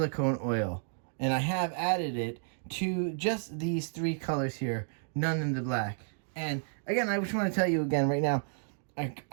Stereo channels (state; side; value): silent; left; digital silence